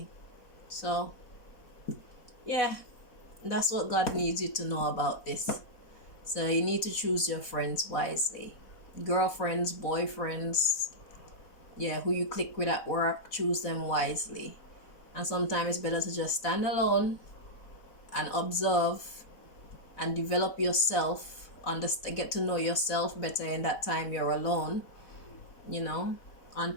So yeah, that's what God needs you to know about this. So you need to choose your friends wisely. Girlfriends, boyfriends, who you click with at work, choose them wisely. And sometimes it's better to just stand alone and observe and develop yourself, get to know yourself better in that time you're alone,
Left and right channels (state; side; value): late; right; 4.0 ms